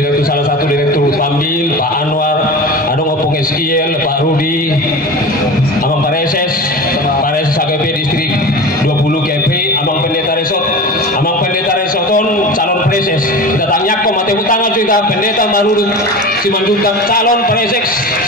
salah satu direktur Pambil Pak Anwar adong opung SKL Pak Rudi Amang Pareses AGP distrik 20 KP Amang Pendeta Resoton calon preses kita tanya kok mati utang juga pendeta baru Simanjuntak calon preses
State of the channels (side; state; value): both; normal; correlation 0.31